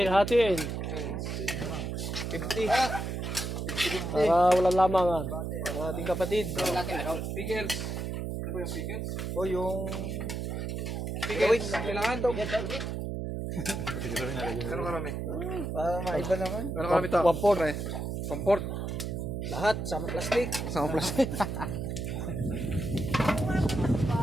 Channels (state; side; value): noise; right; hum, 3 dB below the sound